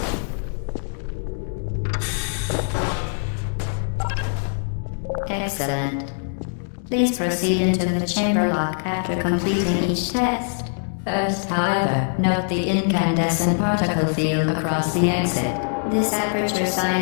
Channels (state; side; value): silent; right; digital silence